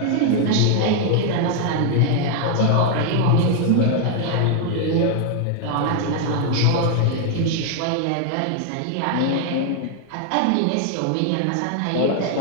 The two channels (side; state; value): both; different; correlation 0.00